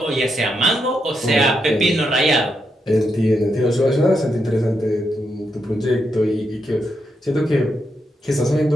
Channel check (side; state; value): both; normal; correlation 0.82